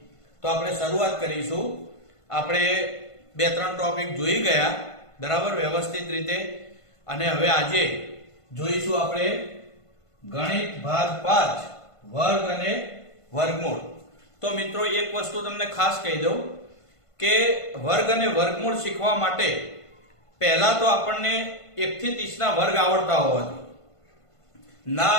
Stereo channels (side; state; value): right; late; 1.5 ms